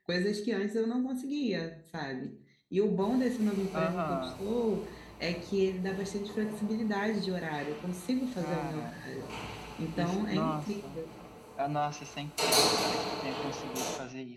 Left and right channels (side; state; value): both; identical; correlation 1.00